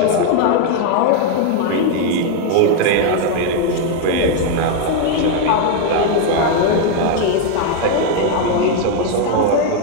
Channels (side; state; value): both; different; correlation 0.01